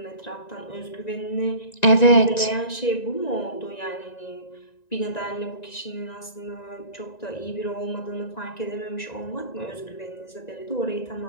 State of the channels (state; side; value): late; right; 1.9 ms